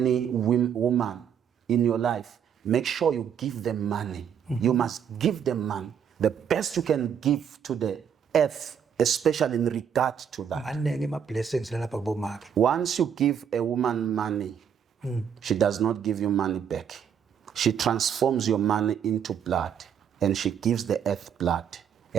woman in your life, make sure you give them money. You must give them money. The best you can give to the earth, especially in regard to that. Once you give a woman money, she does not give you money back. She transforms your money into blood, and she gives the earth blood.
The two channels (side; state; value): left; quieter; 8.1 dB